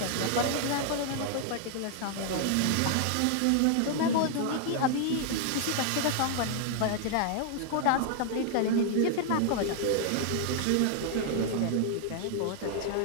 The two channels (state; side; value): different; both; correlation 0.00